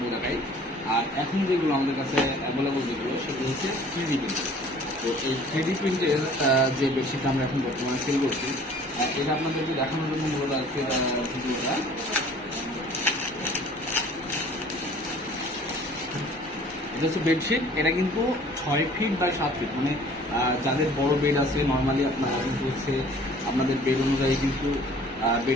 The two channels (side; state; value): both; normal; correlation 0.51